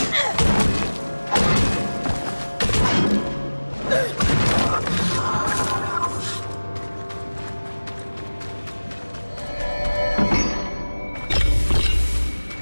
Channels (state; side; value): inverted; both; correlation -1.00